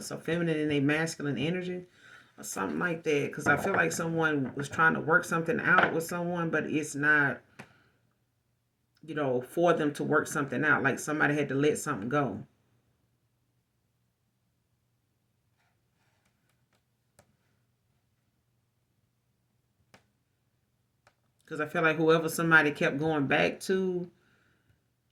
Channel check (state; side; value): identical; both; correlation 1.00